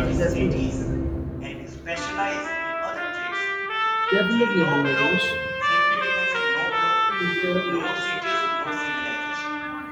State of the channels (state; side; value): identical; both; correlation 1.00